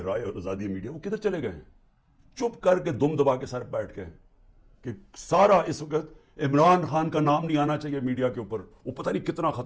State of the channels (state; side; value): identical; both; correlation 1.00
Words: اور آزادی میڈیا، وہ کدھر چلے گئے ہیں؟ چپ کر کے دم دبا کے سر بیٹھ گئے کہ سارا اس وقت عمران خان کا نام نہیں آنا چاہیے میڈیا کے اوپر، وہ پتہ نہیں کتنا